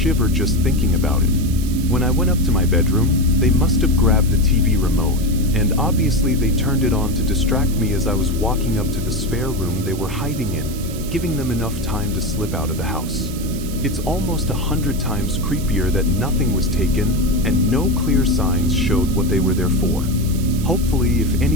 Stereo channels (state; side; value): noise; right; hiss, 14 dB below the sound